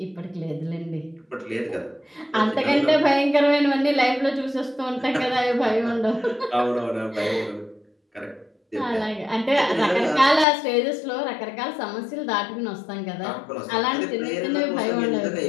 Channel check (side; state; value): right; drops out; at 10.5 s